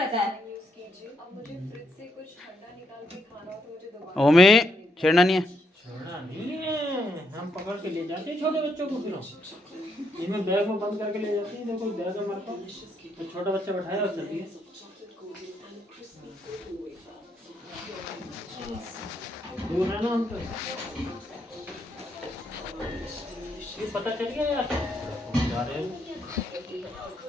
है। ओमे छेड़ना नहीं है। छोड़ा नहीं है, हम पकड़ के ले जाते हैं छोटे बच्चों को, फिर हम इनमें बैग में बंद करके ले जाते हैं। देखो बैग है हमारे पास, तो छोटा बच्चा बैठाया और चलती है। दूर है ना हम तो, ये पता चल गया यार जा रहे हैं।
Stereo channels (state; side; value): normal; both; correlation 0.77